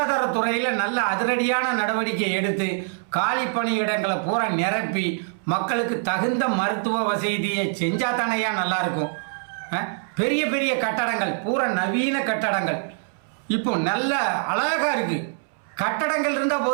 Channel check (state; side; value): silent; left; 62 dB below the other